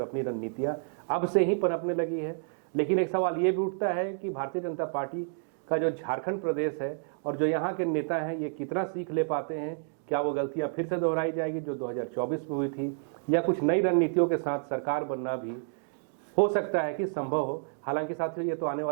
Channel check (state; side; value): silent; left; digital silence